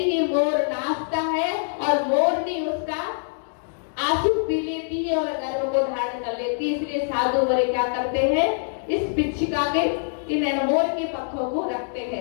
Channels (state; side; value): silent; right; digital silence